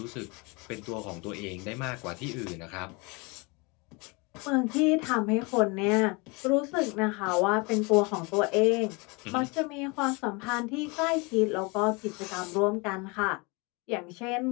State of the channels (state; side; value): quieter; right; 28.4 dB